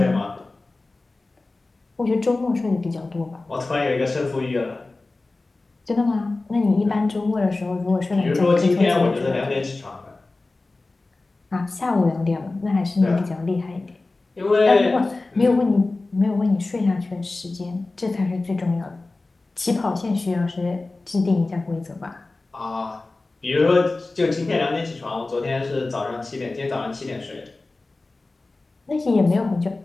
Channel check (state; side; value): quieter; right; 3.3 dB